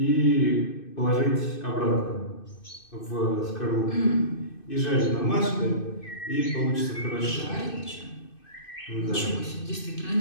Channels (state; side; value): late; right; 2.6 ms